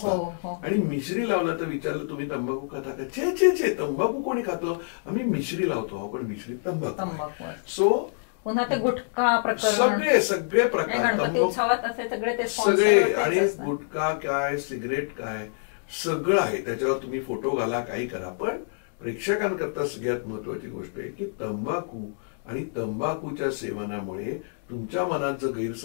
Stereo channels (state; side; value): silent; right; digital silence